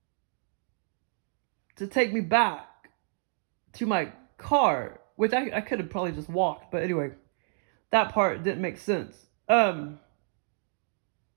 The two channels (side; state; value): left; silent; digital silence